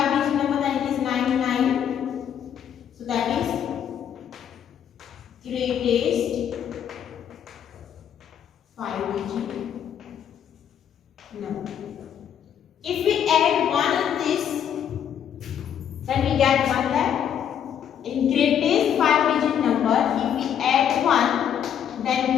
number, then it is 99. So that is greatest 5-digit number. If we add 1 in this, then we get 1 lakh. In greatest 5-digit number, if we add 1, then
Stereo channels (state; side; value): quieter; right; 9.1 dB